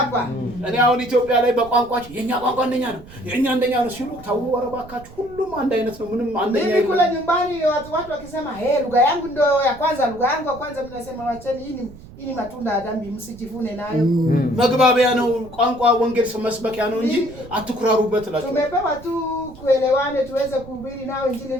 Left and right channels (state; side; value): noise; right; rumble, 19 dB below the sound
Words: እኔ አሁን ኢትዮጵያ ላይ በቋንቋቸው የኛ ቋንቋ አንደኛ ነው የኛ አንደኛ ነው ሲሉ ታው ወረባካችሁ ሁሉም አንድ አይነት ነው ምንም አንደኛ Mimi kule nyumbani watu wakisema lugha yangu ndio ya kwanza, lugha yangu ya kwanza, mnasema wacheni hii ni matunda ya dhambi, msijivune nayo. መግባቢያ ነው ቋንቋ ወንጌል መስበኪያ ነው እንጂ አትኩራሩበት እላችሁ። Tumepewa tu kuelewane tuweze kuhubiri nao injili,